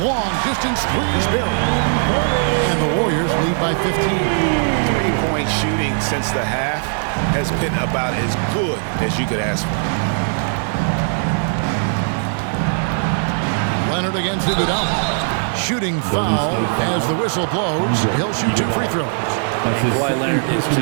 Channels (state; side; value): silent; left; digital silence